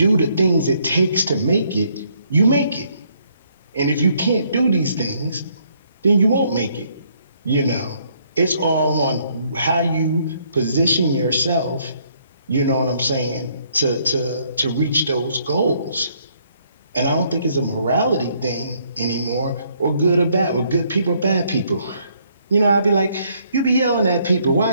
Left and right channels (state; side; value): inverted; both; correlation -0.69